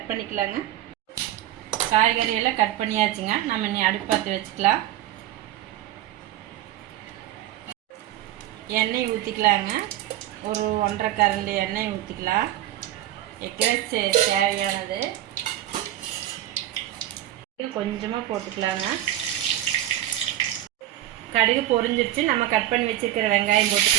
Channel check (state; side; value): quieter; left; 13.4 dB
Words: பண்ணிக்கலாங்க. காய்கறியெல்லாம் கட் பண்ணியாச்சுங்க. நம்ம இனி அடுப்பு பற்ற வச்சுக்கலாம். எண்ணெய் ஊற்றிக்கலாங்க. ஒரு 1.5 கரண்டி எண்ணெய் ஊற்றிக்கலாம். எக் ரைஸ் தேவையானது கொஞ்சமாக போட்டுக்கலாங்க. கடுகு பொரிஞ்சிருச்சு. நம்ம கட் பண்ணி வச்சுருக்கிற வெங்காயம்